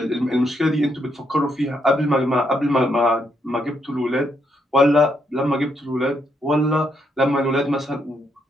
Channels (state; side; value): normal; both; correlation 0.77